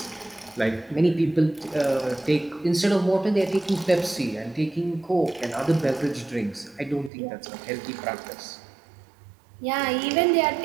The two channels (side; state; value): left; drops out; at 7.1 s